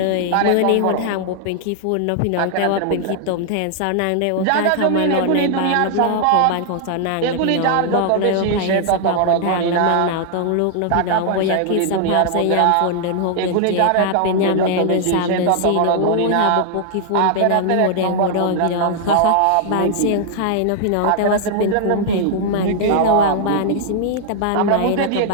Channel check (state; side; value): different; both; correlation 0.00